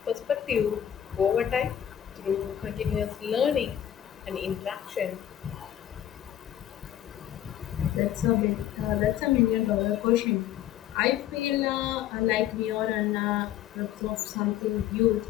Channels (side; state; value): right; quieter; 11.2 dB